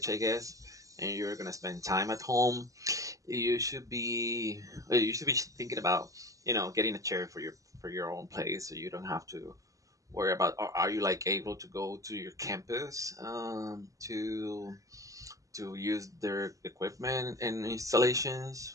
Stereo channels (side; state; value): left; late; 0.16 ms